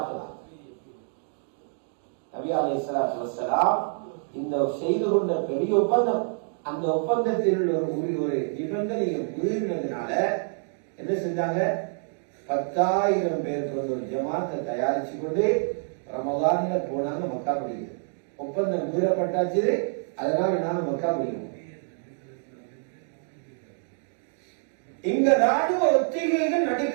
நபி அலைஹிஸ்ஸலாத்து வஸ்ஸலாம் இந்த செய்து கொண்ட பெரிய ஒப்பந்தம், அந்த ஒப்பந்தத்தில் ஒரு நிபந்தனையை மீறினதுனால என்ன செஞ்சாங்க, 10,000 பேர் கொண்ட ஒரு ஜமாத்தை தயாரிச்சு கொண்டு ரமதான்ல போனாங்க மக்கா படிக்கிறது. ஒப்பந்தம் மீறப்பட்டாச்சு, அதனால நாங்க மக்கா படிக்கணும். இங்க ராணுவ ஒத்திகைகள்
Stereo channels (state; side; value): silent; left; 60 dB below the other